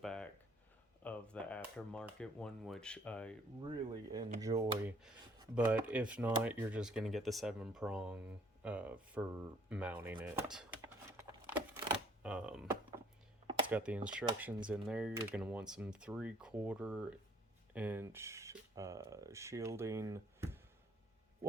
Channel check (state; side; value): normal; both; correlation 0.61